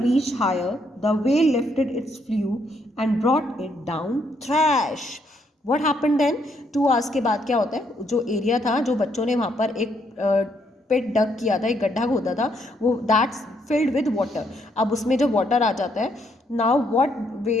reach higher, the well lifted its flu and brought it down thrash. What happened then? 2 hours के बाद क्या होता है, जो एरिया था, जो बच्चों ने वहाँ पर एक पिट डग किया था, एक गड्ढा खोदा था, वो दैट्स फिल्ड विद वाटर। अब उसमें जब वाटर आ जाता है, now what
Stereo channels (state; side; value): normal; both; correlation 0.73